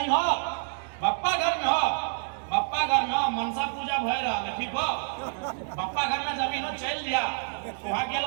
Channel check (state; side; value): silent; left; digital silence